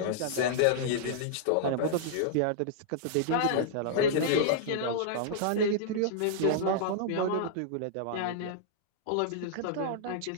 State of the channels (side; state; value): both; different; correlation -0.01